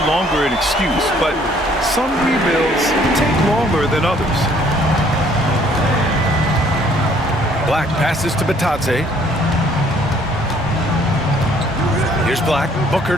longer an excuse, but some rebuilds take longer than others. Black passes to Batadze. Here's Black. Booker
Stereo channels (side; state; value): both; normal; correlation 0.61